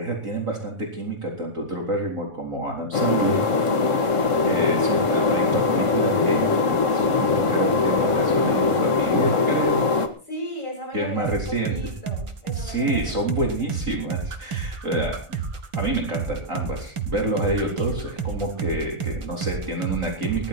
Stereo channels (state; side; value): late; left; 1.5 ms